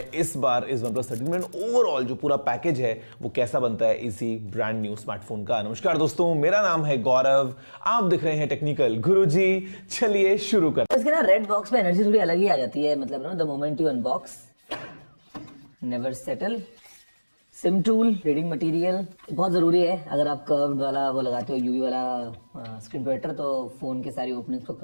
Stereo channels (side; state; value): both; inverted; correlation -1.00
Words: इस बार इस OnePlus 13 में। ओवरऑल जो पूरा पैकेज है वो कैसा बनता है इसी ब्रांड न्यू स्मार्टफोन का। नमस्कार दोस्तों, मेरा नाम है गौरव, आप दिख रहे हैं टेक्निकल गुरुजी। चलिए शुरू करते हैं। इसके ना रेड बॉक्स में एनर्जी थोड़ी अलग ही आ जाती है, मतलब ना the moment you unbox never settle. SIM tool, reading material बहुत जरूरी है। अगर आप कर्व्ड वाला वो लगाते हो यूवी वाला स्क्रीन प्रोटेक्टर तो फोन के सारी ओपनिंग्स को